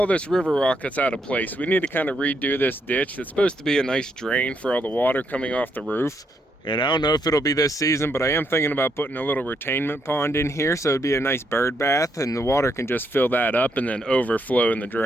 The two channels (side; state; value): both; normal; correlation 0.76